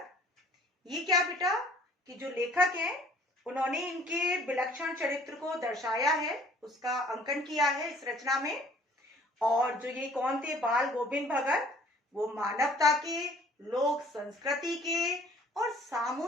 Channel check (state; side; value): normal; both; correlation 0.54